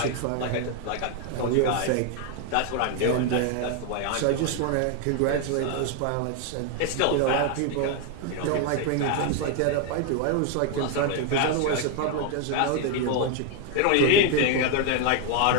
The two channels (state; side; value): different; both; correlation 0.01